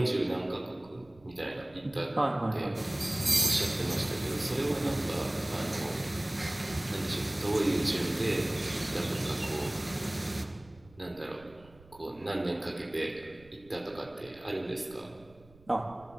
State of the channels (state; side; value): noise; right; rumble, 25 dB below the sound